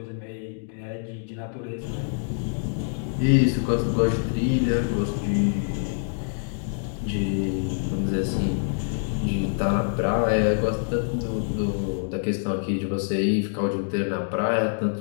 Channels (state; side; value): silent; right; digital silence